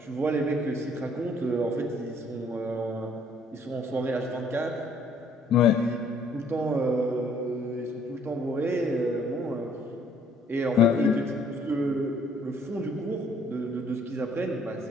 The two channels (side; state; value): both; normal; correlation 0.62